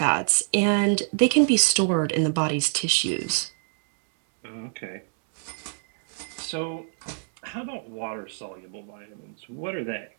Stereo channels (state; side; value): silent; left; 61 dB below the other